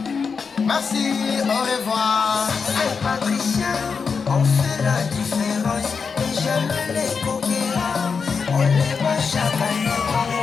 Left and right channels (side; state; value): right; quieter; 5.5 dB